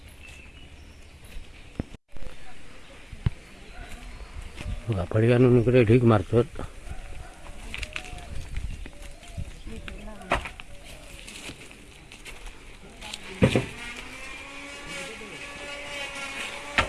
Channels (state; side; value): identical; both; correlation 1.00